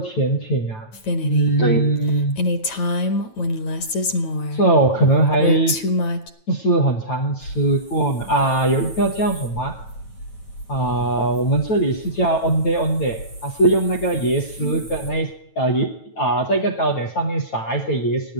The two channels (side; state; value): right; late; 9.1 ms